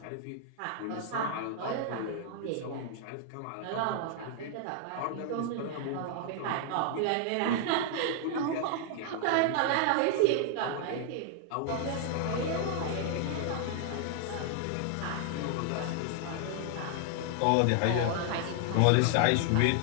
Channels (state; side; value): different; both; correlation 0.00